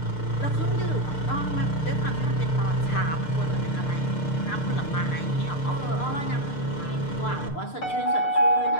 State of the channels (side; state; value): right; late; 6.7 ms